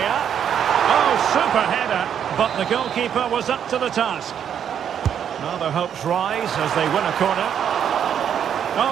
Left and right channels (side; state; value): left; quieter; 8.7 dB